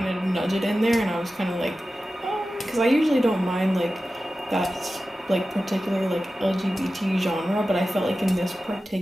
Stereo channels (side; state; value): both; normal; correlation 0.94